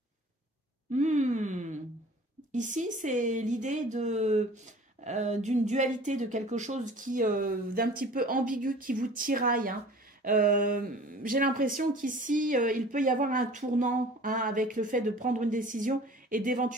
Ici, c'est l'idée d'une dualité, de quelque chose qui d'un petit peu ambigu, qui vous tiraille, hein. J'ai l'impression qu'ici, il peut y avoir un tournant, hein, avec le fait de prendre une décision et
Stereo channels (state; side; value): normal; both; correlation 0.45